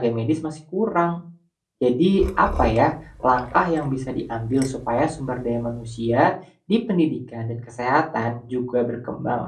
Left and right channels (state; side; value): identical; both; correlation 1.00